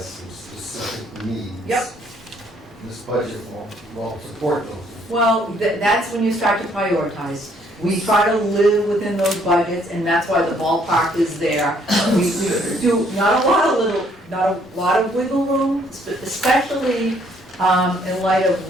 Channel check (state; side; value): normal; both; correlation 0.66